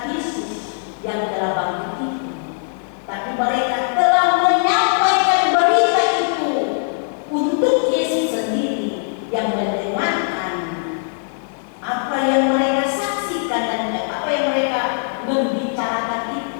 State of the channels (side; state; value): right; silent; digital silence